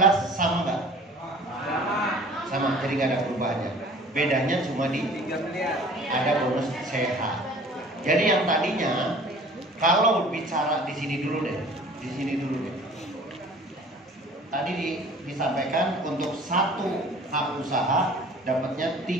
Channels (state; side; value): normal; both; correlation 0.48